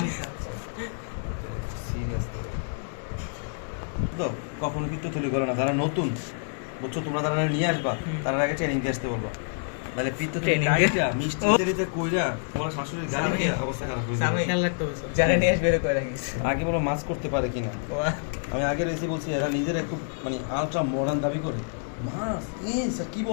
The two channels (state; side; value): silent; right; digital silence